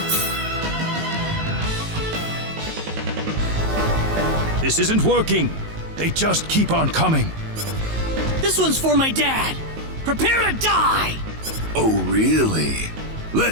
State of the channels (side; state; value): left; late; 19 ms